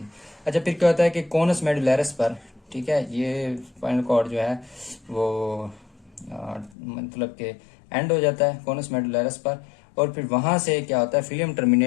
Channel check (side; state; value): right; drops out; at 6.8 s